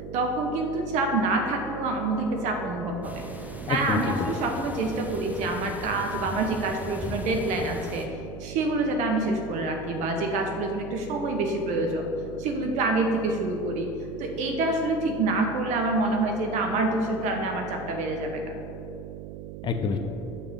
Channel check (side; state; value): right; noise; hum, 11 dB below the sound